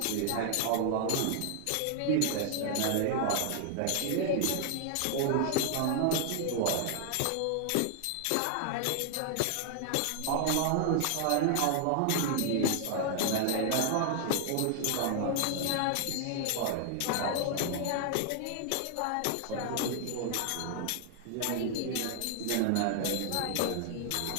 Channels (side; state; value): both; different; correlation 0.00